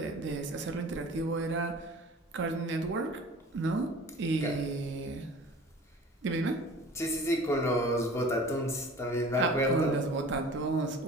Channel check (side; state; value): both; normal; correlation 0.44